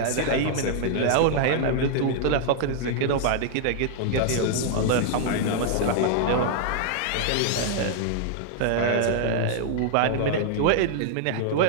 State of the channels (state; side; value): different; both; correlation -0.01